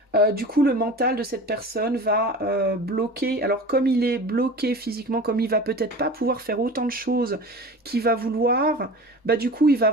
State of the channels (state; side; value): normal; both; correlation 0.36